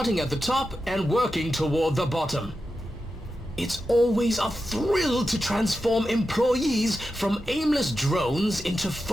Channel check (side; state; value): both; normal; correlation 0.91